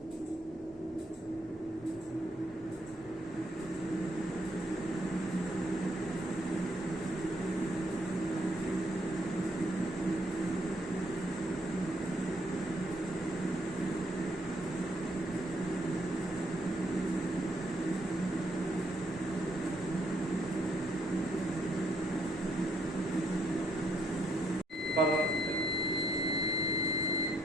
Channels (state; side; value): normal; both; correlation 0.72